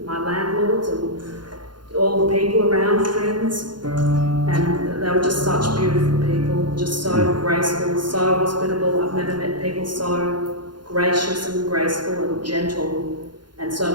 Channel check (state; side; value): late; left; 0.71 ms